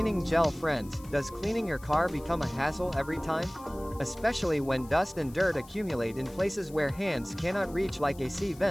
gel. Friends, does cleaning your car become a hassle every time? Especially when dust and dirt accumulate in places where hands cannot reach, like AC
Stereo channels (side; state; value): left; noise; hiss, 22 dB below the sound